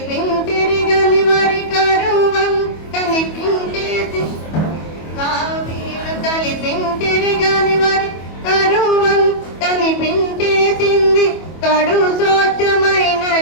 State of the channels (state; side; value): late; right; 25 ms